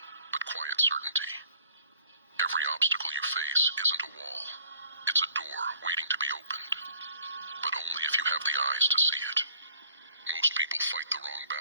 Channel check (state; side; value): inverted; both; correlation -0.58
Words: but quiet certainty. Every obstacle you face isn't a wall. It's a door waiting to be opened. But only if you have the eyes to see it. Most people fight the wrong